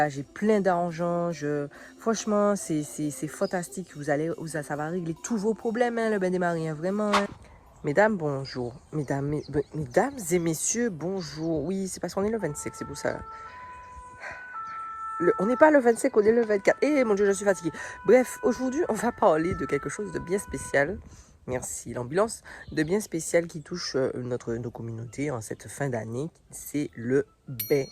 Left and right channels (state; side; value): identical; both; correlation 1.00